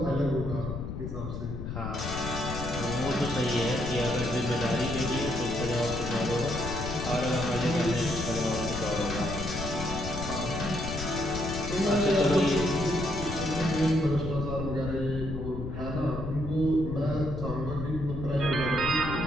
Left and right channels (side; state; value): left; noise; rumble, 6 dB below the sound